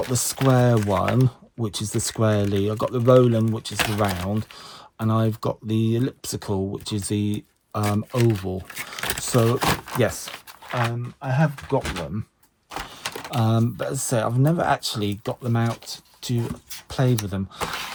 the square one, which is the squarely. I've got the Roland, which is the round, and I've got the elliptical, which is the oval. So yes, I have got them, but as I say, I've never actually got them out to play with them.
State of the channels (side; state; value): both; identical; correlation 1.00